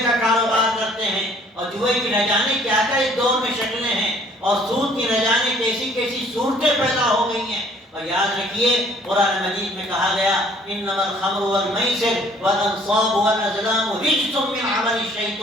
کا کاروبار کرتے ہیں، اور جوئے کی نہ جانے کیا کیا اس دور میں شکلیں ہیں، اور سود کی نہ جانے کیسی کیسی صورتیں پیدا ہو گئی ہیں۔ اور یاد رکھیے قرآن مجید میں کہا گیا انما الخمر والمیسر والانصاب والازلام رجس من عمل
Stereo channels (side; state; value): both; normal; correlation 0.58